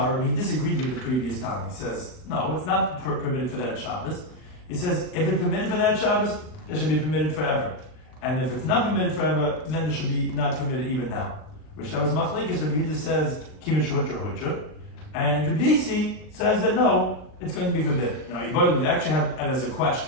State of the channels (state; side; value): late; right; 39 ms